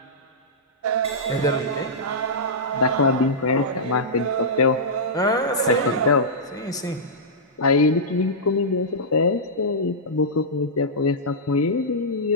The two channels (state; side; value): normal; both; correlation -0.13